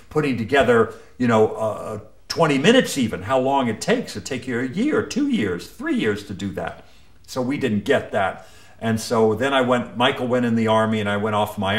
putting together, 20 minutes even, how long it takes. It'd take you a year, 2 years, 3 years to do that. So we didn't get that. And so then Michael went in the Army, and I went off my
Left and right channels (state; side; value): identical; both; correlation 1.00